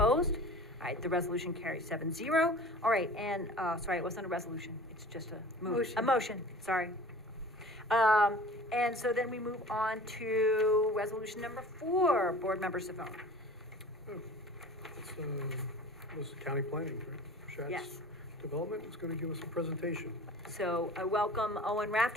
All right, the resolution carries 7-0. All right, and, sorry, it wasn't a resolution. It's just a motion, sorry. And so then we move on to resolution number 4, Board Member Savone. This is county planning, right? Shatz Yes. Development is going to give us a presentation. So I welcome Owen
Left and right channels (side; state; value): both; normal; correlation 0.42